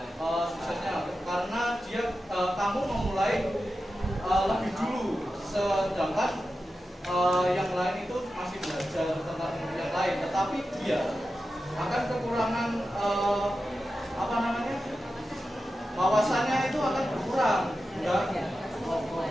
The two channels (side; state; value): both; normal; correlation 0.92